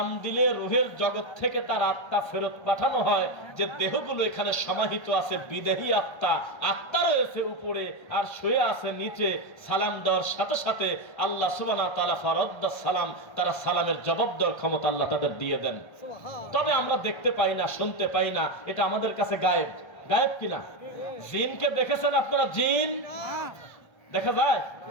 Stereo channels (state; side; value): late; right; 1.3 ms